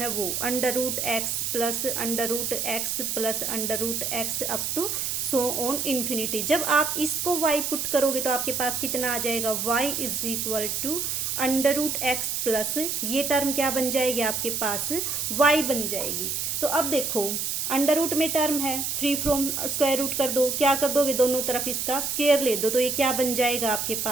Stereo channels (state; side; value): noise; right; hiss, 1 dB below the sound